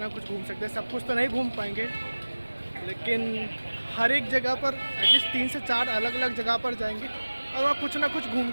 कुछ घूम सकते हैं। सब कुछ तो नहीं घूम पाएंगे लेकिन हर एक जगह पर एटलीस्ट 3 से 4 अलग अलग जगह पर जाएंगे और वहाँ कुछ ना कुछ घूम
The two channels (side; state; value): both; inverted; correlation -1.00